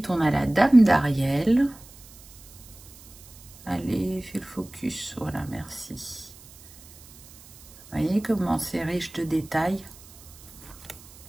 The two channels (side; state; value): right; noise; hiss, 21 dB below the sound